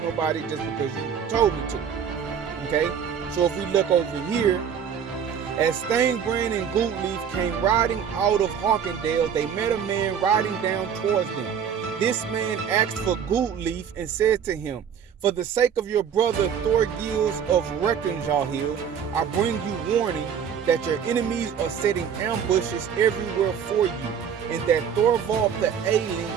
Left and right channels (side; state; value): left; quieter; 7.8 dB